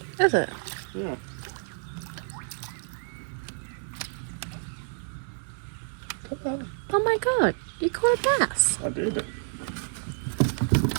Is it? Yeah. Oh my god, you caught a bass. I did.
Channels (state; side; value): silent; left; digital silence